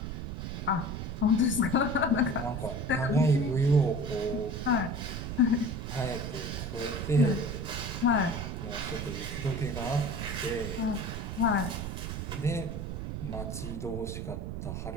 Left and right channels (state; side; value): noise; right; rumble, 5 dB below the sound